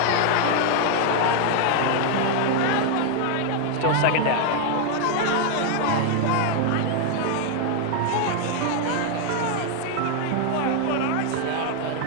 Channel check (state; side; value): different; both; correlation 0.00